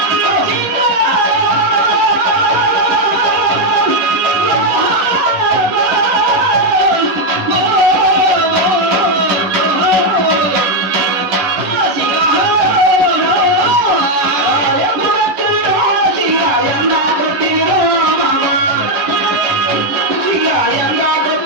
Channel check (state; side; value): late; left; 11 ms